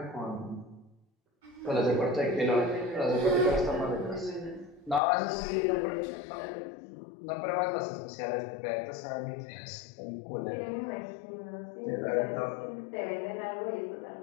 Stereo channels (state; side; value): drops out; right; at 5.0 s